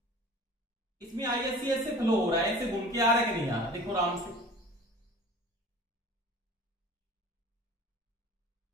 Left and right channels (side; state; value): both; normal; correlation 0.43